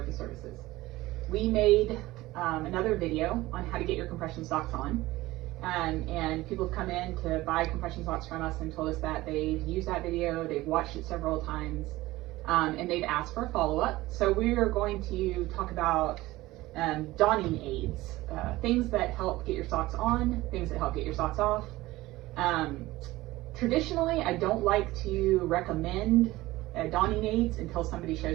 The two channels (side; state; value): left; quieter; 18.3 dB